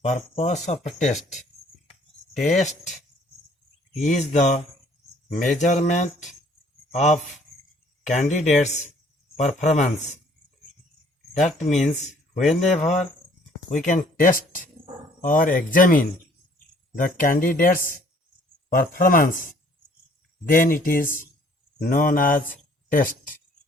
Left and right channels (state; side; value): normal; both; correlation 0.59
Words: Purpose of a test. Test is the measurement of candidates' performance. That means whenever we can test or examine the candidate's performance, then it is known as test.